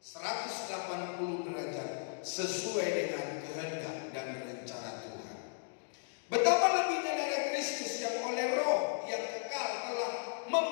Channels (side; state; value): right; silent; digital silence